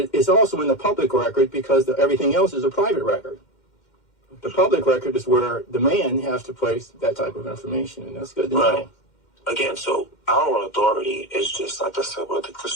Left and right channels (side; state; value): right; late; 2.1 ms